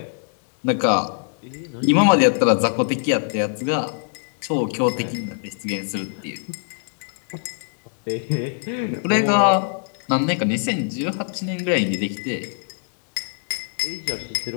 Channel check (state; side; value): silent; right; digital silence